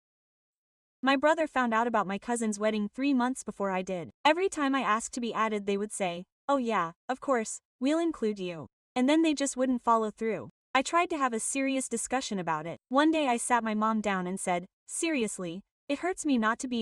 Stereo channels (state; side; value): identical; both; correlation 1.00